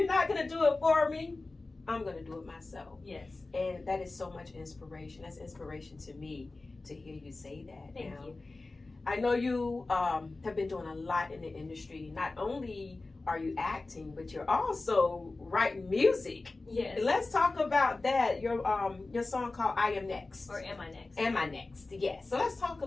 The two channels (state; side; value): quieter; right; 3.3 dB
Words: not going to do it for me, I'm going to do it myself. Yes. And that is so much inspiration. That's inspiration to me to hear you say that. Thank now, you. I know you have been doing a lot in the industry. Not only are you acting, but you're also writing music. Yes. Let's talk about that. Your song called "I Am Next." Or am I next? Am I Next? Yes. So let's talk a